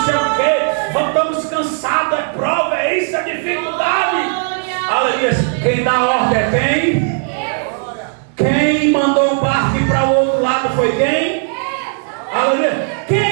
sei o quê? Estamos cansados, é prova, é isso, é dificuldade. Aleluia. Quem dá ordem é quem? Quem mandou o barco ir para o outro lado foi quem? Aleluia.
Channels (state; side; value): silent; left; 55 dB below the other